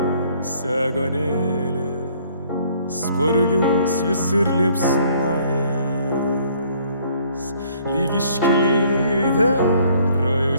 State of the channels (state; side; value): inverted; both; correlation -0.61